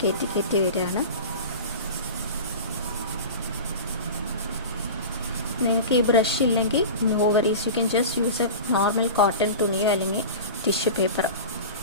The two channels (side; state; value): both; inverted; correlation -0.32